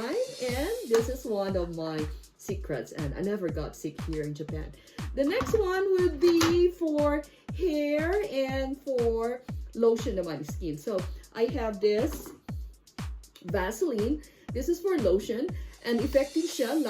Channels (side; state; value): both; identical; correlation 1.00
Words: and this is one of my secrets, and I never got sick here in Japan. The next one would be for hair and for lotion naman skin. So, I have this Vaseline. This is for lotion, And effective siya.